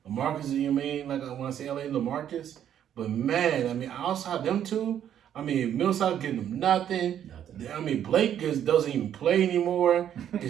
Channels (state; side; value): quieter; left; 10.0 dB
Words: LaMarcus, you mean, like when I say LA, LaMarcus. But man, I mean, outside them two, I mean, Millsap getting them nothing. I mean, Blake just doesn't even play anymore.